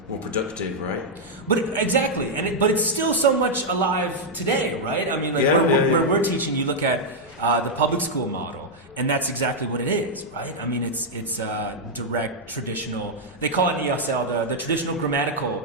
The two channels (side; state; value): both; normal; correlation -0.03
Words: productive, right? Exactly. But it's still so much alive today, right? I mean, where we're teaching, you look at the public school model, and that's exactly what it is, right? I mean, it's direct, traditional. They call it ESL the traditional